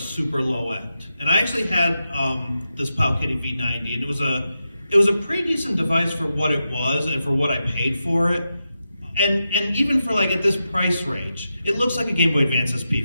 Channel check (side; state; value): both; inverted; correlation -0.89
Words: low end. And I actually had this Powkiddy V90, and it was a pretty decent device for what it was and for what I paid for it. And even for at this price range, it looks like a Game Boy Advance SP,